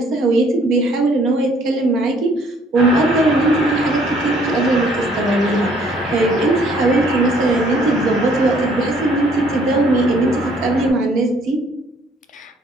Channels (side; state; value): both; normal; correlation 0.61